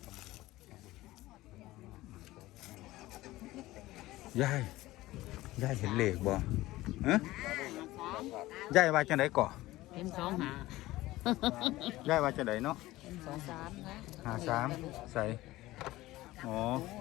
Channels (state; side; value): quieter; right; 17.6 dB